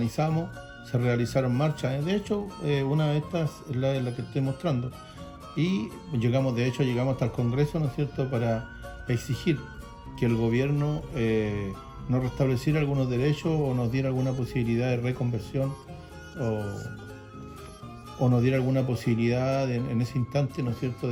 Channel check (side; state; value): both; identical; correlation 1.00